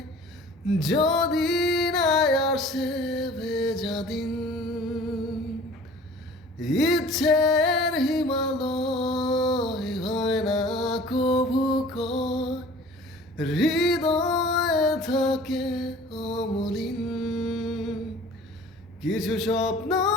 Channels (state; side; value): normal; both; correlation 0.46